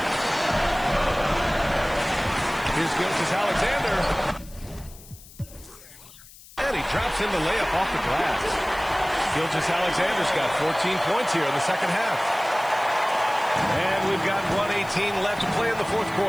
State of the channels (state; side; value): noise; left; hiss, 21 dB below the sound